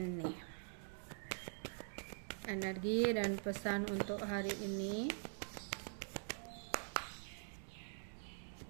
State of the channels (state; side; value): silent; left; digital silence